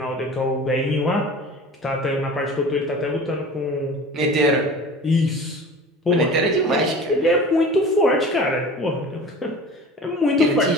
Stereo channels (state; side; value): normal; both; correlation 0.39